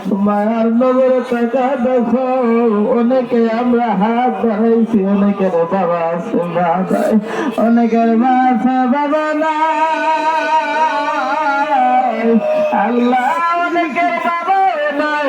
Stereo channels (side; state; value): both; identical; correlation 1.00